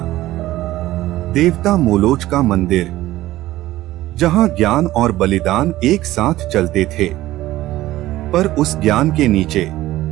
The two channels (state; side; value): quieter; left; 15.9 dB